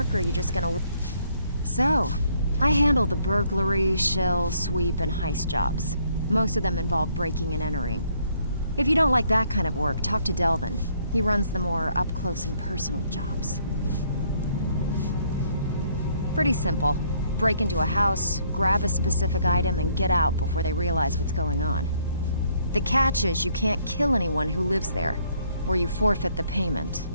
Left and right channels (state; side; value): inverted; both; correlation -0.67